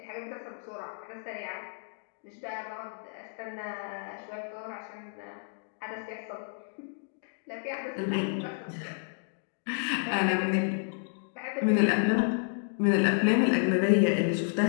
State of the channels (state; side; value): silent; right; 56 dB below the other